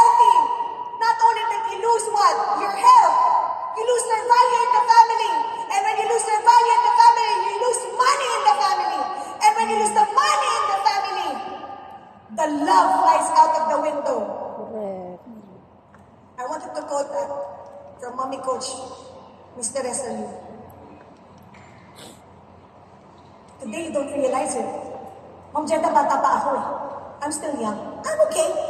not only that you lose what? Your health. You lose their value in the family. And when you lose their value in the family, you lose money in the family. And when you lose the money in the family, the love flies out of the window. Correct. I wanted to quote that from Mommy Coach, Mr. Resalu. Today, you don't realize it. Ma'am Jeda, bata pa ako eh. I'm still young. I'm okay.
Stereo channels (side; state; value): both; identical; correlation 1.00